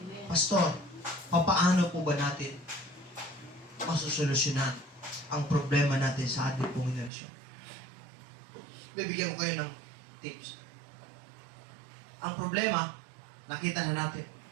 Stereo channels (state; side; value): drops out; left; at 7.1 s